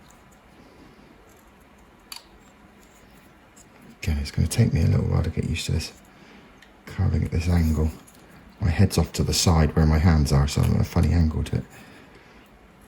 Again, it's going to take me a little while to get used to this carving at this angle. My head's off to the side where my hands are, so I'm at a funny angle to it.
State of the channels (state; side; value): identical; both; correlation 1.00